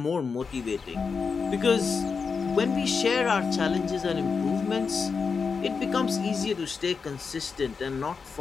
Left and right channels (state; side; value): quieter; right; 5.3 dB